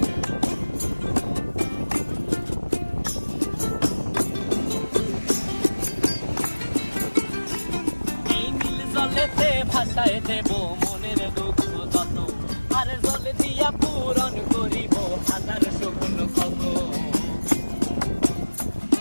এই নীল জলেতে ভাসায় দেব মনের দুঃখ যত, আর জল দিয়া পূরণ করিব হাজার শকুন ক্ষত।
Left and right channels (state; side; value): inverted; both; correlation -1.00